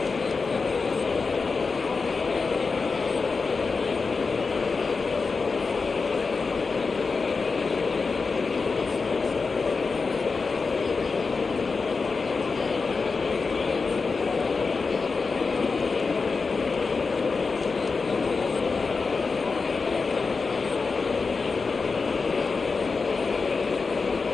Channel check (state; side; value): quieter; right; 4.5 dB